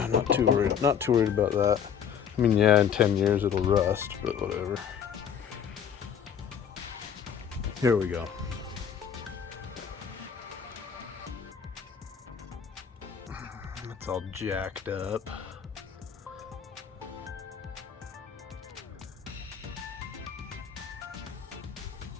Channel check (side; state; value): right; quieter; 8.0 dB